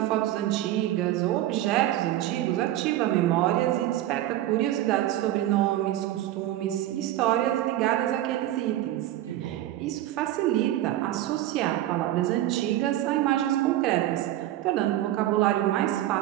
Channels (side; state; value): left; quieter; 14.0 dB